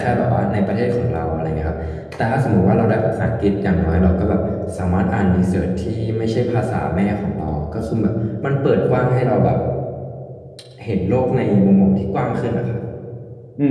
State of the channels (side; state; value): both; identical; correlation 1.00